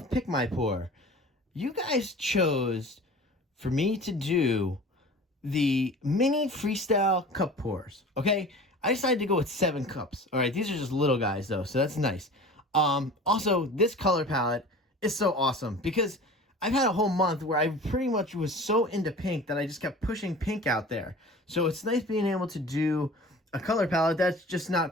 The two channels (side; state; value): both; normal; correlation 0.40